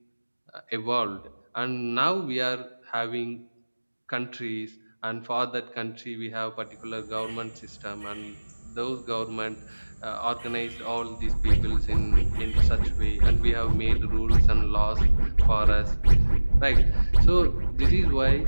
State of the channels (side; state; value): both; inverted; correlation -1.00